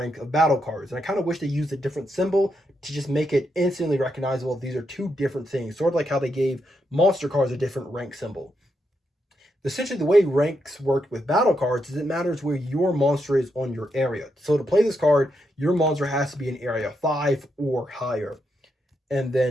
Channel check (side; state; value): both; normal; correlation 0.82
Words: of battle cards, and I kind of wish they used a different symbol to just make it instantly recognizable. These are 2 different things, sort of like how they gave monster cards a different rank symbol. Essentially, the way ranks work with battle cards is it matters where your monster is on your area. So to play this card, your monster has to be in area 5 or higher. And